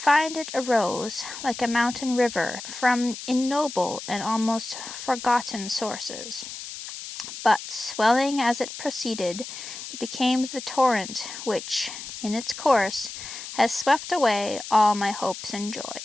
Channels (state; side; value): noise; left; hiss, 10 dB below the sound